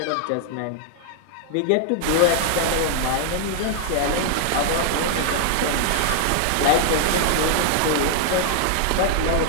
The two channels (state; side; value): different; both; correlation 0.00